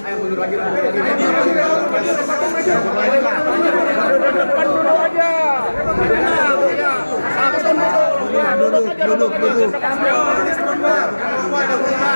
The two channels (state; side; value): inverted; both; correlation -1.00